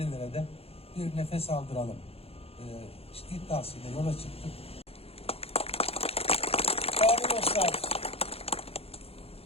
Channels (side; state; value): right; late; 0.29 ms